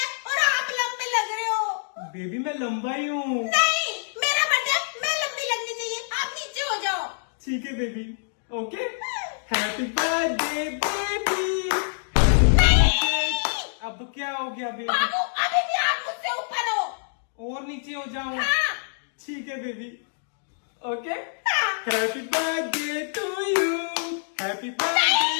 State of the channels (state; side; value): silent; right; digital silence